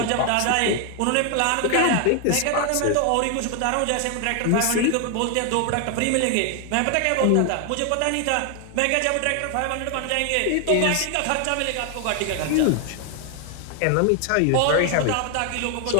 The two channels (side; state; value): both; different; correlation 0.00